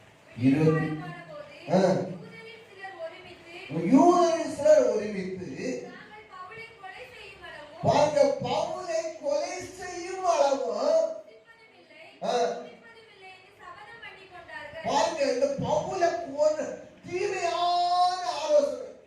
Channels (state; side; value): identical; both; correlation 1.00